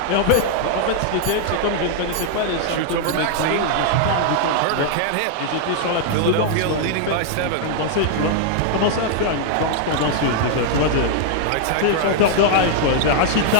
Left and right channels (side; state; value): both; different; correlation -0.01